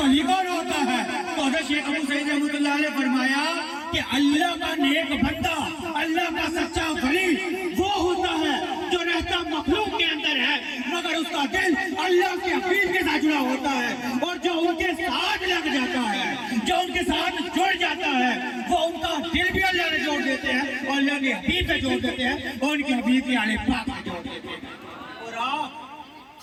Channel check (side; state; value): both; identical; correlation 1.00